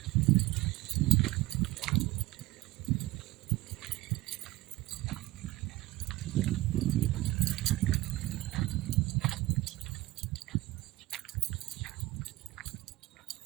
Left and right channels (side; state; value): left; quieter; 18.0 dB